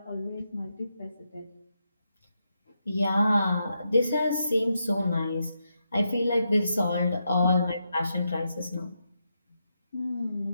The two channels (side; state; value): both; inverted; correlation -0.84